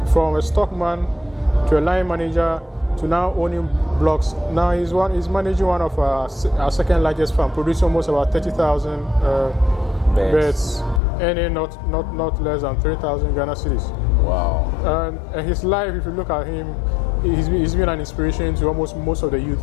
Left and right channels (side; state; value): right; drops out; at 11.0 s